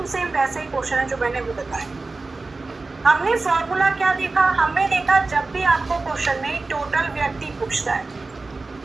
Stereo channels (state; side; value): quieter; left; 3.6 dB